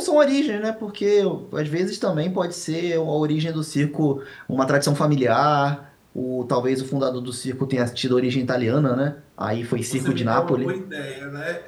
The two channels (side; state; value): both; identical; correlation 1.00